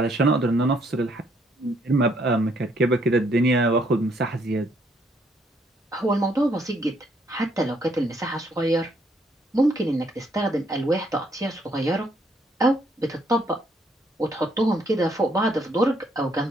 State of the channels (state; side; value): normal; both; correlation 0.69